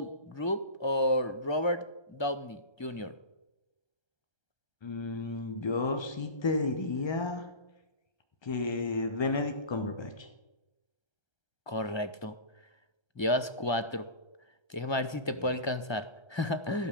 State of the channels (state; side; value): late; right; 1.3 ms